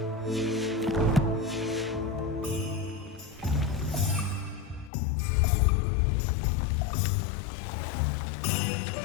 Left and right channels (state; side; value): drops out; right; at 4.9 s